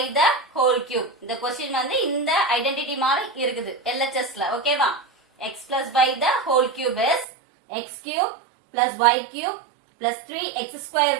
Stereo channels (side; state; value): left; drops out; at 7.2 s